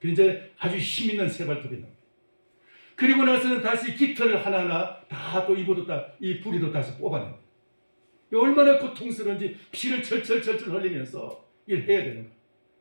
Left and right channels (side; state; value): both; inverted; correlation -1.00